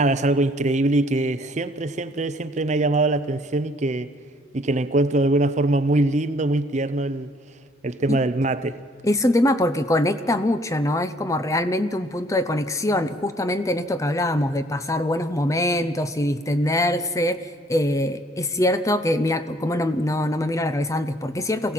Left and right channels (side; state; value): both; normal; correlation 0.61